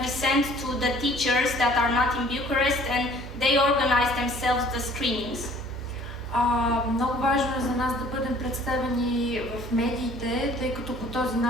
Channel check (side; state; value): right; noise; hum, 12 dB below the sound